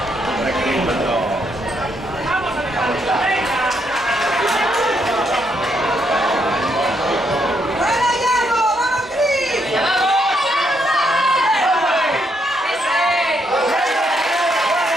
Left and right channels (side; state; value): both; normal; correlation 0.76